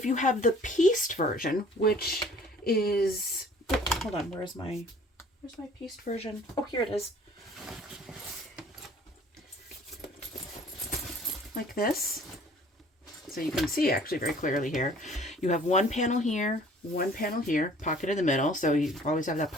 you have the pieced version, which is, hold on, where's my pieced version? Oh, here it is. Like this. So you can see actually very clearly here. You have one panel here, pocket in the middle, so you always have that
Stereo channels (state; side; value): normal; both; correlation 0.52